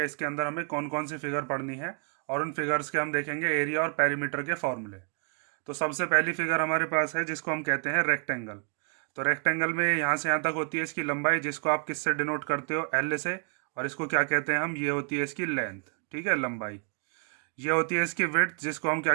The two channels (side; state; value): left; quieter; 38.2 dB